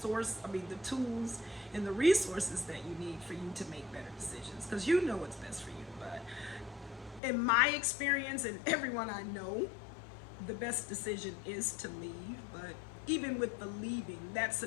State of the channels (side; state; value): right; drops out; at 7.2 s